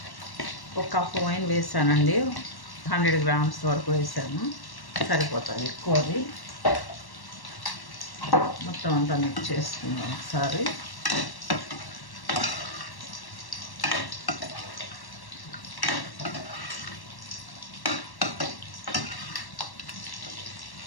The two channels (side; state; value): right; late; 1.1 ms